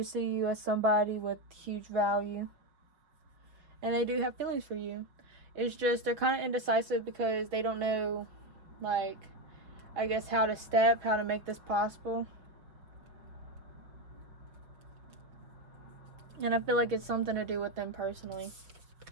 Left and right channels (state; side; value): late; left; 5.6 ms